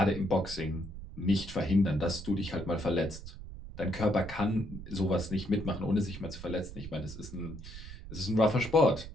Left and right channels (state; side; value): noise; right; rumble, 12 dB below the sound